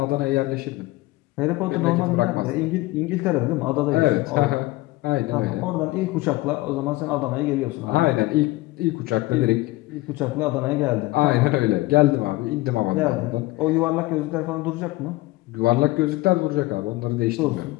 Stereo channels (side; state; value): right; quieter; 19.7 dB